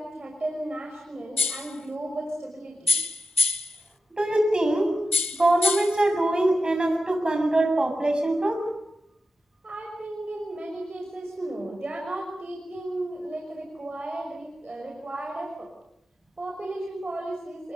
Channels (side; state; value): both; normal; correlation 0.91